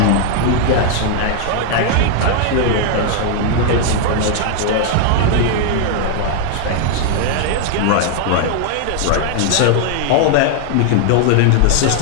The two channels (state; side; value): different; both; correlation 0.00